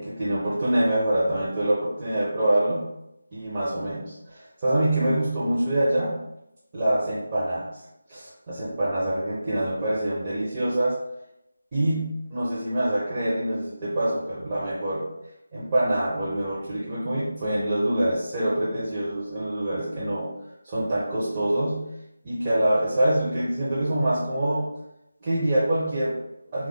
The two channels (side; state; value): both; inverted; correlation -0.92